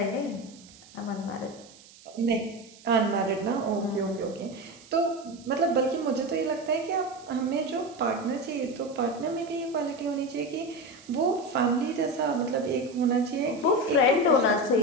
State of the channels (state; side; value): noise; right; hiss, 23 dB below the sound